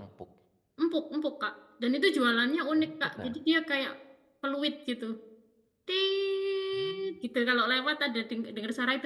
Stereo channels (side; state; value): both; identical; correlation 1.00